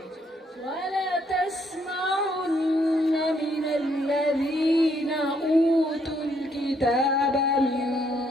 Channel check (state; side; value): normal; both; correlation 0.71